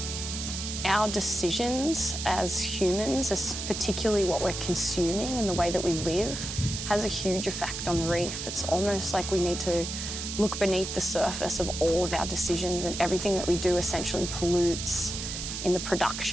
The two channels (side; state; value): right; noise; hiss, 6 dB below the sound